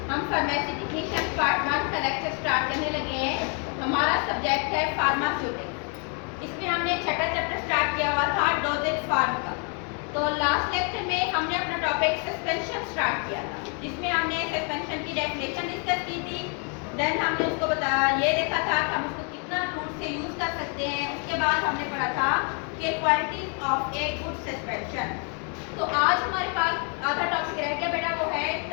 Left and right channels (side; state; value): right; quieter; 39.2 dB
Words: हम फार्मेसी टेक्नीशियन पार्ट 1 का लेक्चर स्टार्ट करने लगे हैं। हमारा सब्जेक्ट है फार्मास्यूटिक्स। इसमें हमने छठा चैप्टर स्टार्ट किया हुआ था डोजेज फार्म का। तो लास्ट लेक्चर में हमने अपना टॉपिक सस्पेंशन स्टार्ट किया था, जिसमें हमने सस्पेंशन की डेफिनेशन डिस्कस की थी। देन हमने उसको बताया, ये देखा था कि हम उसको कितना रूट से यूज कर सकते हैं। उसके बाद हमने पढ़ा था कि qualities of a good suspension. तो आज हमारे पास आधा टॉपिक रह गया बेटा, वो है